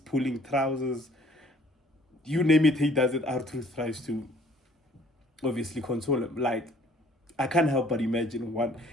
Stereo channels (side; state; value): both; normal; correlation 0.58